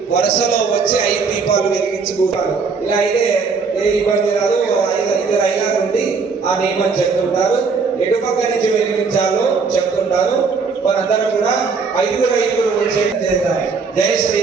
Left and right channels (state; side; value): quieter; left; 5.0 dB